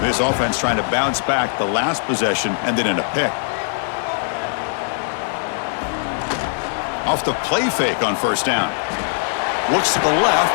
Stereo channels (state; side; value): silent; right; digital silence